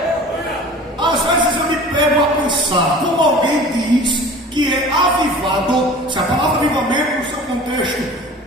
Às vezes eu me pego a pensar, como alguém diz que é avivado, se a palavra avivamento no seu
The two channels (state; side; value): normal; both; correlation 0.42